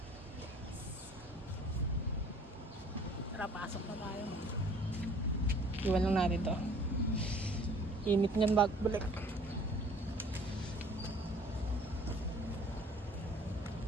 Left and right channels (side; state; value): both; normal; correlation 0.52